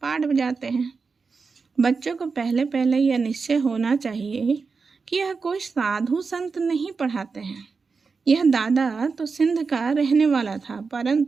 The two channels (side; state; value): left; quieter; 4.8 dB